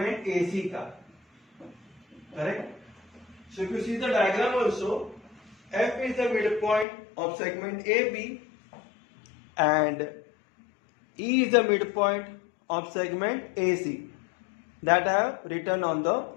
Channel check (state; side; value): drops out; right; at 6.9 s